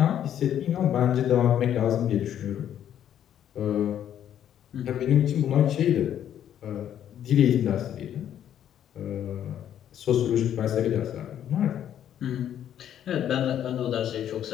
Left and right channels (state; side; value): quieter; right; 10.2 dB